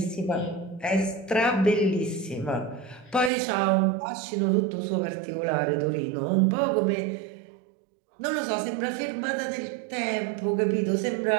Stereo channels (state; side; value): drops out; left; at 3.3 s